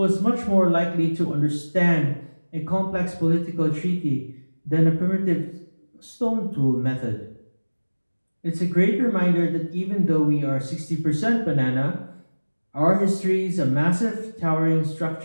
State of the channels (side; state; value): both; inverted; correlation -1.00